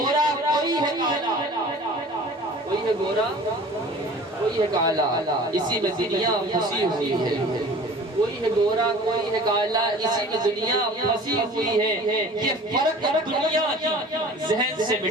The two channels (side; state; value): both; normal; correlation 0.44